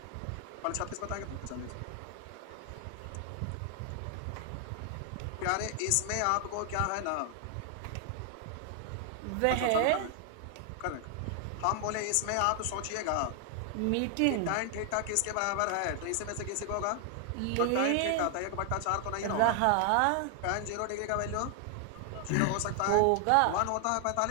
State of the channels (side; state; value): both; different; correlation 0.00